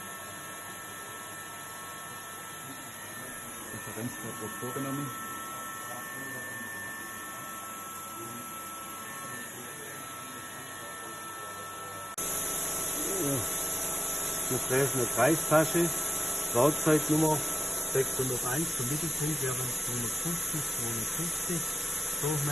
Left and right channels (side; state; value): both; normal; correlation 0.93